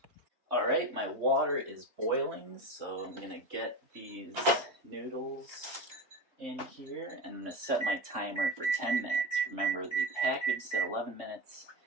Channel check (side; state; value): left; late; 3.2 ms